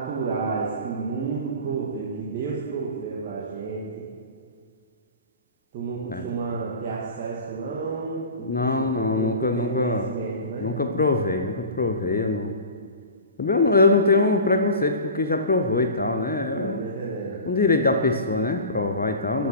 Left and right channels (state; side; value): inverted; both; correlation -0.36